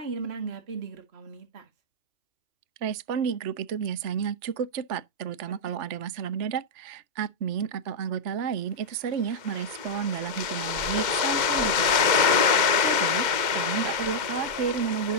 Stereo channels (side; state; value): left; late; 2.2 ms